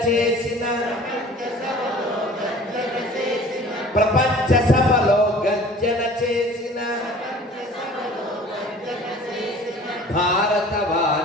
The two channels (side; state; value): both; normal; correlation 0.46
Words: చేసిన ప్రపంచ సభలో గర్జన చేసిన